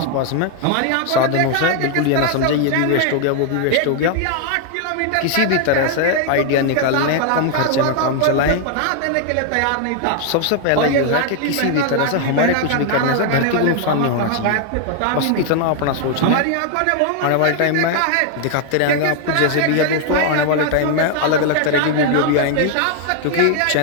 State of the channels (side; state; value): both; different; correlation 0.00